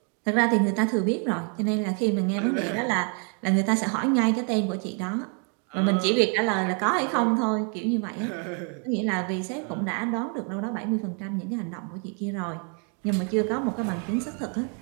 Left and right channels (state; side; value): quieter; left; 39.5 dB